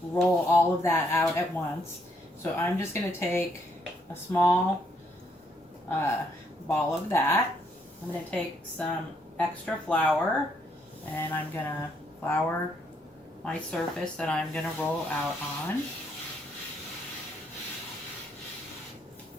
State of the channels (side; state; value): both; normal; correlation 0.72